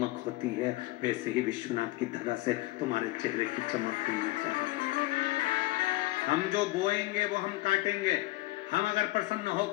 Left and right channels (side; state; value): right; quieter; 19.6 dB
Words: होती है, वैसे ही विश्वनाथ की धरा से तुम्हारे चेहरे की चमक होनी चाहिए। हम जो बोएंगे वो हम काटेंगे। हम अगर प्रसन्न